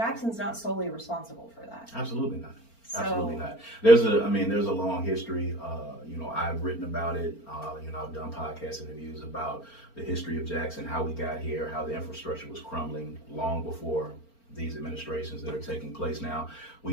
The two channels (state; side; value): late; right; 4.4 ms